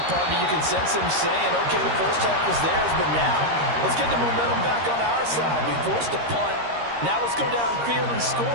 partner, you can sense them saying, okay, the first half was theirs, but now let's get the momentum back on our side. We forced a punt. Now let's go downfield and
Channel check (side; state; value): left; late; 13 ms